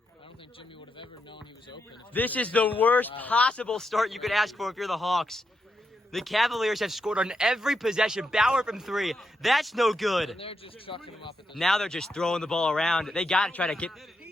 I don't think Jimmy would have ever known he was open. This is the worst possible start you could ask for if you're the Hawks. The Cavaliers have scored on every possession. Bauer from 3. That's no good. And they're just chucking him up at this Now they're just throwing the ball around. They got to try to get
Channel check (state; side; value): normal; both; correlation 0.83